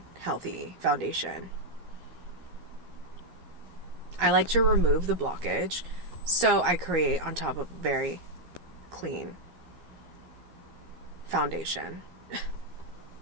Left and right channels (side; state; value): left; late; 12 ms